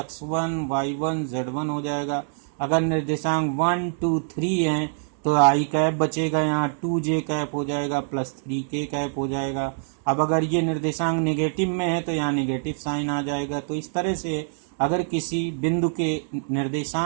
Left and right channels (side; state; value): left; silent; digital silence